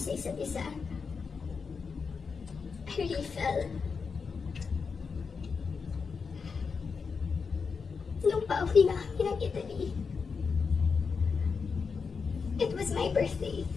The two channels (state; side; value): quieter; right; 5.3 dB